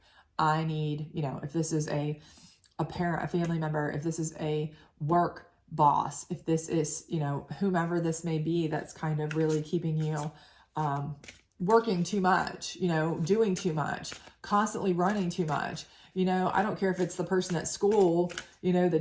I need, if this is a parent, a family member, if this is a work boss, if this is, whomever this may be, that's kind of really keeping you working too much, doing too much, constantly running too much. I don't care if it's the person at school,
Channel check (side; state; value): both; identical; correlation 1.00